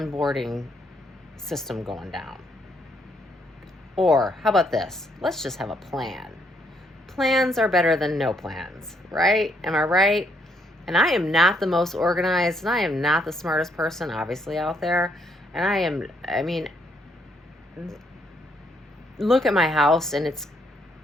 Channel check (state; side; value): normal; both; correlation 0.72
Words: system going down. Or how about this? Let's just have a plan. Plans are better than no plans, right? Am I right? And I am not the most organized, and I am not the smartest person, obviously, out there. And look at my house, and it's